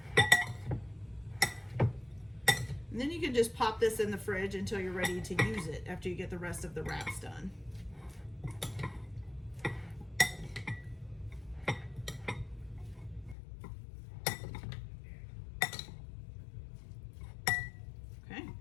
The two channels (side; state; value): right; drops out; at 13.4 s